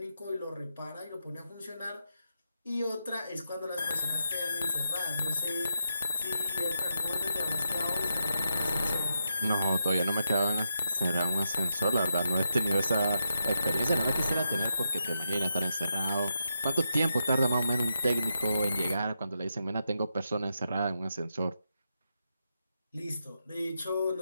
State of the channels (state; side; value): inverted; both; correlation -0.85